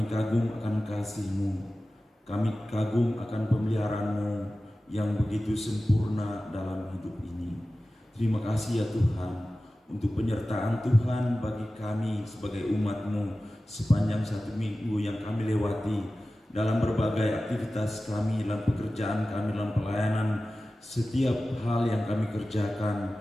kagum akan kasih-Mu. Kami kagum akan pemeliharaan-Mu yang begitu sempurna dalam hidup ini. Terima kasih ya Tuhan untuk penyertaan Tuhan bagi kami sebagai umat-Mu sepanjang 1 minggu yang kami lewati dalam berbagai aktivitas kami, dalam pekerjaan kami, dalam pelayanan. Setiap hal yang kami kerjakan,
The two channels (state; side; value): normal; both; correlation 0.95